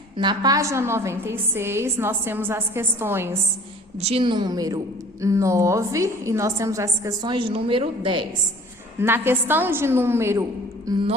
Na página 96, nós temos as questões de número 9 e nós temos as questões de número 10. Na questão de número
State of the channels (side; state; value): both; normal; correlation 0.49